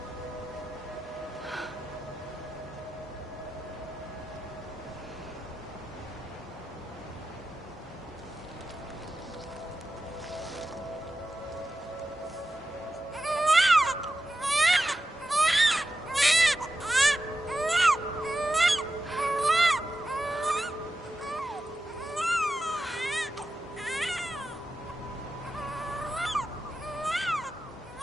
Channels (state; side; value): normal; both; correlation 0.92